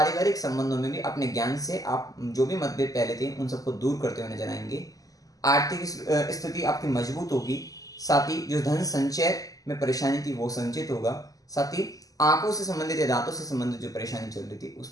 संबंधों में भी अपने ज्ञान से आप जो भी मतभेद पहले थे उन सबको दूर करते हुए नजर आएंगे। आर्थिक स्थिति आपकी मजबूत होगी, साथ ही जो धन संचय में परेशानी थी वो संचित होगा, साथ ही आंखों से संबंधित या दांतों से संबंधित जो परेशानी चल रही थी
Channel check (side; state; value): right; late; 0.17 ms